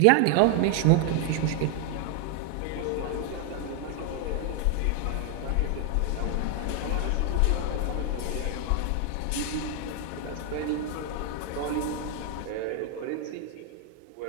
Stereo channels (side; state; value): both; different; correlation 0.01